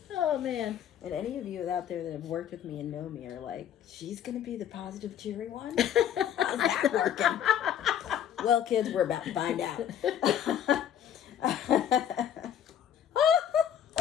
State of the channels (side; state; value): right; quieter; 9.7 dB